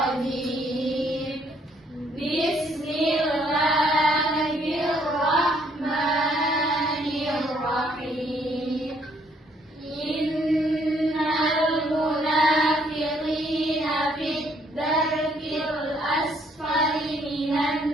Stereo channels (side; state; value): both; normal; correlation 0.66